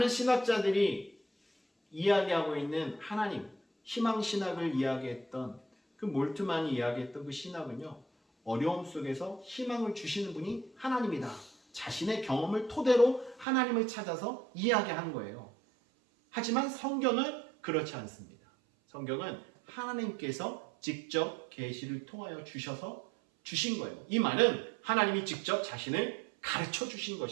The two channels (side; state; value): left; drops out; at 13.5 s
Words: 신학자들이 이야기하고 있는 하나님, 희망신학을 이야기했던 그 몰트만이 이야기했던 그 신학은요, 어려움 속에서 희망을 주시는 분이 하나님이다. 자신의 경험을 토대로 하나님을 찾아서 이야기한 거예요. 하지만 성경은 그렇지 않습니다. 성경은 하나님께서 직접 계시를 통하여 주셔서 주신 거예요. 이 말은 하나님이 직접 자신을 가르쳐 주신